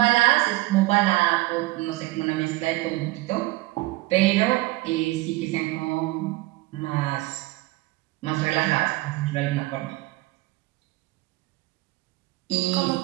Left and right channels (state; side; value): quieter; left; 19.9 dB